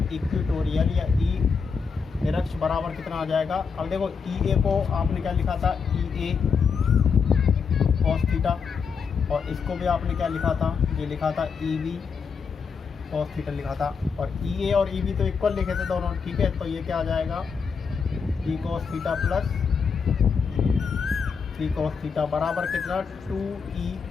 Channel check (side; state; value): right; quieter; 5.8 dB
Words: इक्वेटोरियल या ई निरक्ष बराबर कितना आ जाएगा। अब देखो ई ए को आपने क्या लिखा था, ई ए cos थीटा, और इसको भी आपने क्या लिखा था, ये लिखा था ई बी cos थीटा लिखा था। और ई ए और ई बी तो इक्वल लिखे थे दोनों। ठीक है, तो ये क्या आ जाएगा, ई cos theta plus three cos theta बराबर कितना, 2e